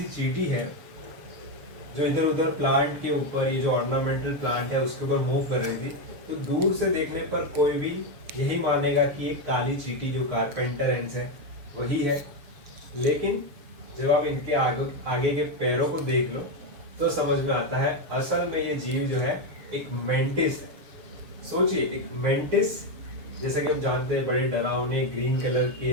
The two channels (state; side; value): late; left; 7.0 ms